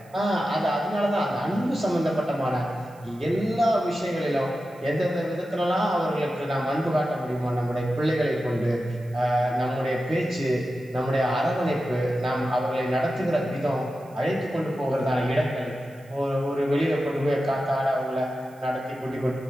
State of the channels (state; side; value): noise; right; hiss, 29 dB below the sound